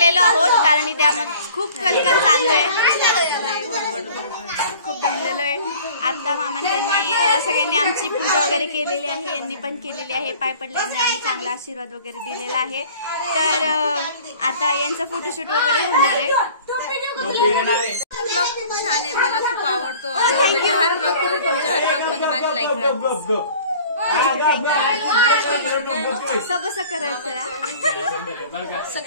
आहोत कारण इथे आम्हाला खूप कलकल चालू आहे, खूप दमलेलो आहे. आता मामांनी त्यांनी सगळ्यांनी आमची पूजा वगैरे केलेली आहे, यांनी पण केलेली आहे. पाय पडल्याने आम्ही चांगला आशीर्वाद वगैरे दिलेला आहे. तर आता यांचं फोटोशूट वगैरे होणार आहे. खूप छान आहे, मला खूप आवडतो. हर ब्लॉग मध्ये माझी लाईक सबसं करायचं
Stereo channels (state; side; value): inverted; both; correlation -0.48